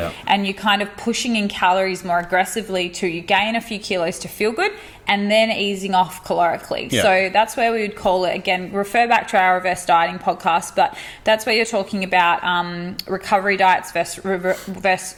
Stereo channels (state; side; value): identical; both; correlation 1.00